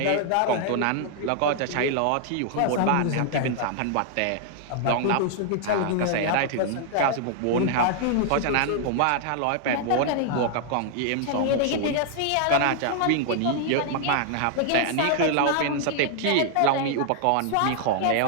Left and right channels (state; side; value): different; both; correlation 0.00